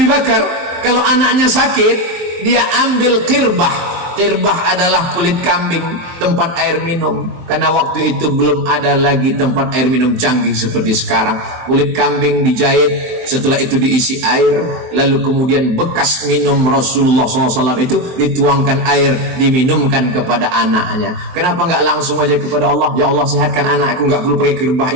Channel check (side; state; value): left; late; 23 ms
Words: Bakar, kalau anaknya sakit, dia ambil qirbah, Kirbah adalah kulit kambing, tempat air minum. Karena waktu itu belum ada lagi tempat air minum canggih seperti sekarang. Kulit kambing dijahit, setelah itu diisi air, lalu kemudian bekas minum Rasulullah SAW itu dituangkan air, diminumkan kepada anaknya. Kenapa nggak langsung aja kepada Allah? Ya Allah, sehatkan anakku, nggak perlu pakai kirbah,